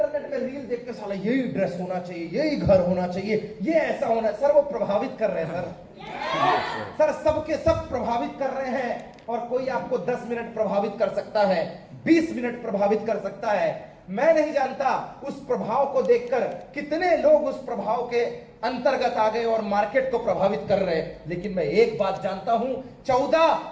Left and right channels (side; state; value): both; identical; correlation 1.00